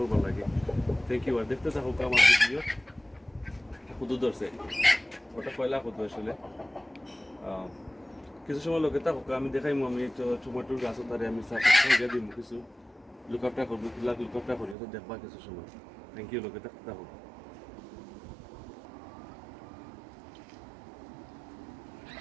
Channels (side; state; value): left; drops out; at 14.8 s